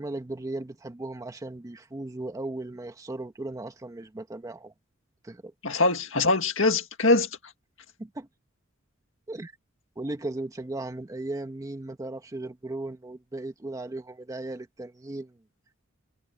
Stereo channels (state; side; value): normal; both; correlation -0.03